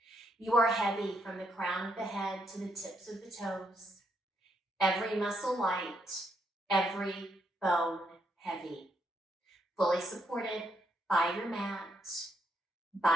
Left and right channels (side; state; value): both; normal; correlation 0.77